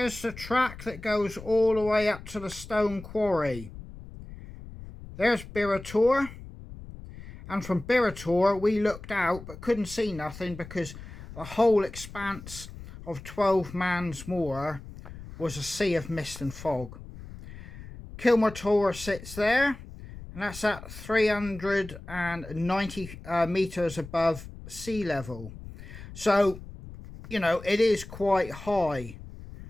the track that goes all the way up to the stone quarry. There's Bearah Tor. And from Bearah Tor, we looked out but couldn't see nothing because the whole expanse of 12 Moor was a sea of mist and fog. Kilmore Tor sits there, and that's at 390 metres above sea level. So, you know, it is quite high.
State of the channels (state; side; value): noise; left; rumble, 14 dB below the sound